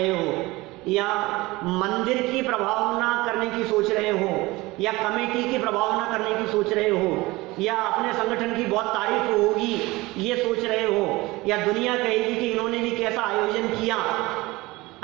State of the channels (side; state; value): left; quieter; 21.1 dB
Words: हो, या मंदिर की प्रभावना करने की सोच रहे हो, या कमेटी की प्रभावना करने की सोच रहे हो, या अपने संगठन की बहुत तारीफ होगी ये सोच रहे हो, या दुनिया कहेगी कि इन्होंने भी कैसा आयोजन किया,